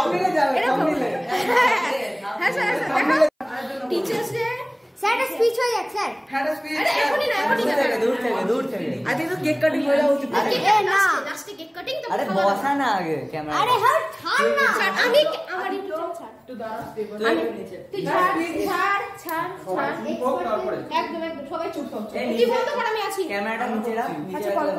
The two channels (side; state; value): both; identical; correlation 1.00